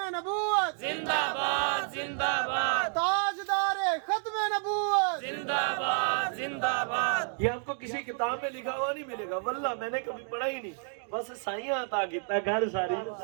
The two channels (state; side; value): silent; left; 55 dB below the other